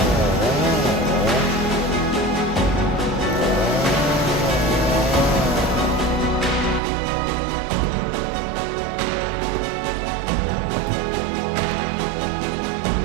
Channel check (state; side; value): drops out; left; at 6.8 s